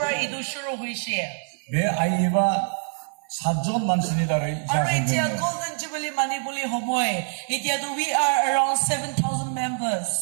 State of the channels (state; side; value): silent; left; 60 dB below the other